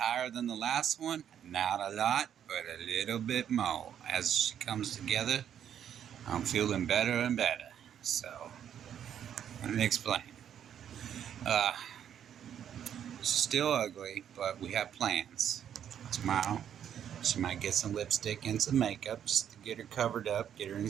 than the last one. Not a lot, but a little bit more. As she comes together, I'm feeling better and better. So, let me explain. Uh, she's still ugly, but we have plans. Tomorrow, she might get some lipstick and some makeup just to get her covered up, get her in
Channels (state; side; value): quieter; left; 9.3 dB